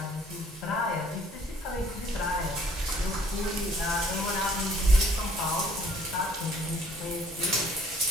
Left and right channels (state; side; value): normal; both; correlation 0.60